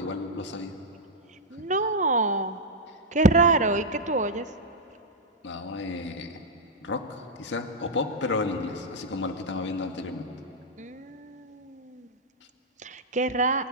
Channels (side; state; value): both; normal; correlation -0.04